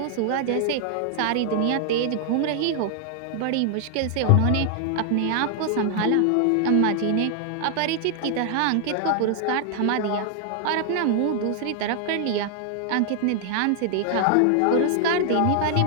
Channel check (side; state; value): both; different; correlation 0.00